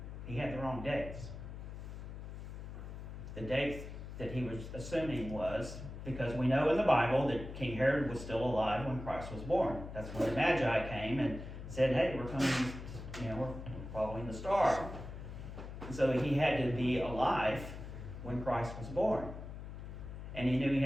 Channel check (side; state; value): left; noise; hum, 10 dB below the sound